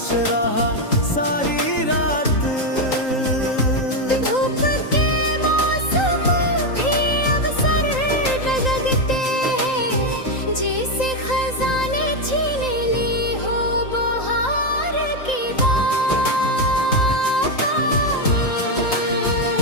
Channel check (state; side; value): late; right; 3.8 ms